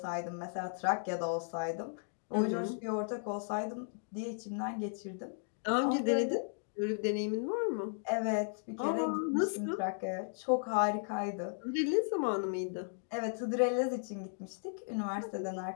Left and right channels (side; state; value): right; silent; digital silence